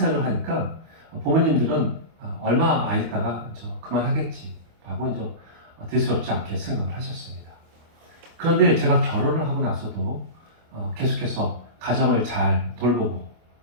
하니까 부모님들은 얼마 안 있다가 그만하겠지 하고 이제 대수롭지 않게 생각을 하셨습니다. 그런데 제가 결혼을 하고 나서도 계속해서 가정을 잘 돌보고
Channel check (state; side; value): late; left; 25 ms